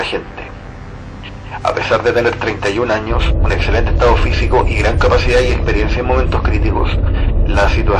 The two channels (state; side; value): identical; both; correlation 1.00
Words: gente. A pesar de tener 31 años, un excelente estado físico y gran capacidad y experiencia en momentos críticos, la